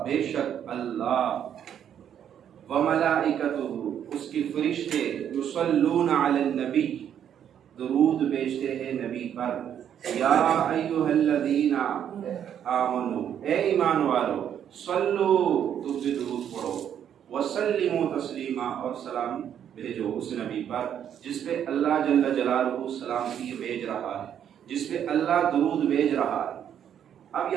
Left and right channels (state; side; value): quieter; left; 9.3 dB